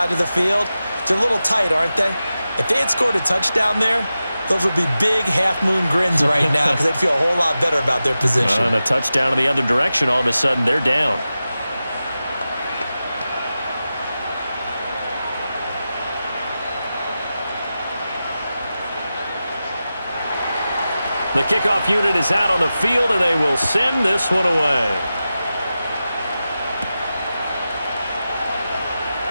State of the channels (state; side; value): inverted; both; correlation -0.93